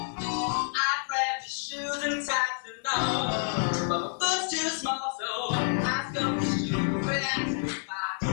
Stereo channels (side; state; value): right; silent; 59 dB below the other